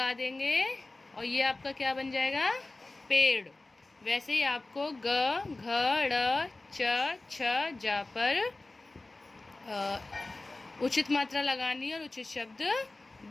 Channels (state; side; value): quieter; right; 3.0 dB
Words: देंगे और ये आपका क्या बन जाएगा, पेड़। वैसे ही आपको ग, घ, ड़, च, छ, जा पर उचित मात्रा लगानी है और उचित शब्द